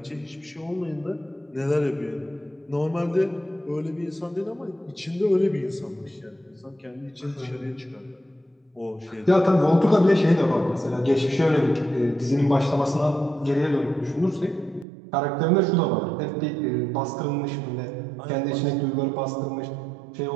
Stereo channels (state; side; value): drops out; left; at 14.9 s